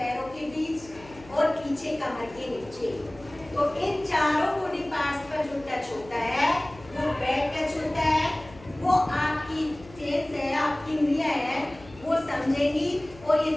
के बीच और पीछे कमर के नीचे। तो इन चारों बॉडी पार्ट्स पर जो टच होता है वो बैड टच होता है। वो आपकी सेंस है, आपकी इंद्रियां है, वो समझेगी और ये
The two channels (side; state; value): left; noise; hum, 21 dB below the sound